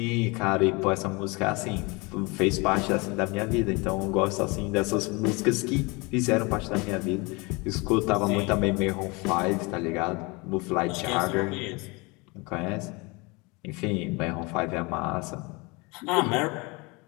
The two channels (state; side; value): quieter; right; 26.9 dB